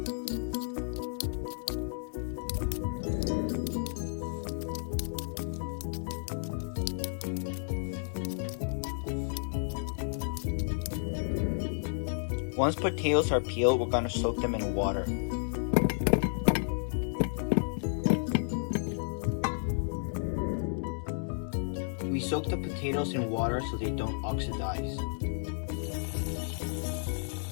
Once potatoes are peeled, we're going to soak them in water. We soak the potatoes in water so they don't oxidize.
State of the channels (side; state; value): right; silent; digital silence